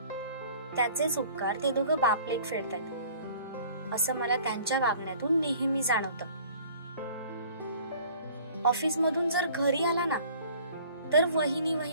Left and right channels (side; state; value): both; inverted; correlation -0.50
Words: त्याचेच उपकार ते दोघं बापलेक फेडतात असं मला त्यांच्या वागण्यातून नेहमी जाणवतं. ऑफिस मधून जर घरी आला ना, तर वहिनी